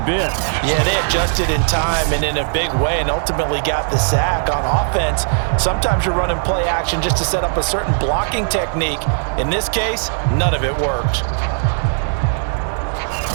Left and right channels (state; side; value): silent; left; digital silence